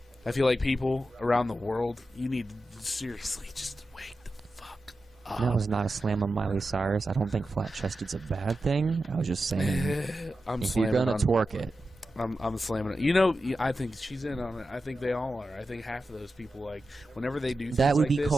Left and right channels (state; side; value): normal; both; correlation 0.91